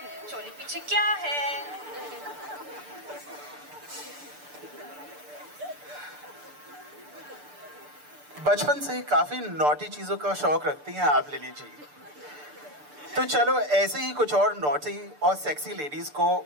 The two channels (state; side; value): late; left; 6.8 ms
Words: चोली पीछे क्या है. बचपन से ही काफी नॉटी चीजों का शौक रखती हैं आप लिली जी. तो चलो ऐसे ही कुछ और नॉटी और सेक्सी लेडीज को